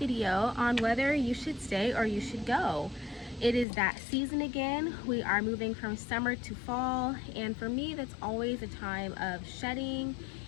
on whether you should stay or you should go. It is that season again. We are moving from summer to fall, and for me that's always a time of shedding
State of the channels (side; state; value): right; drops out; at 3.7 s